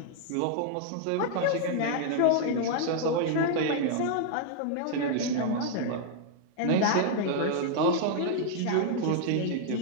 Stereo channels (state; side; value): different; both; correlation -0.01